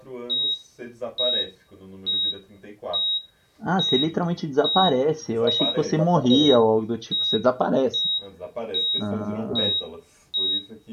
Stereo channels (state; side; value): identical; both; correlation 1.00